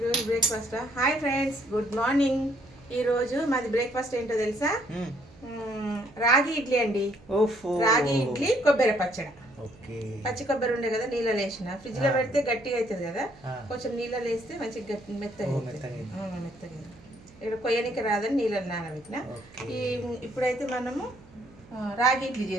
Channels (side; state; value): right; noise; hum, 24 dB below the sound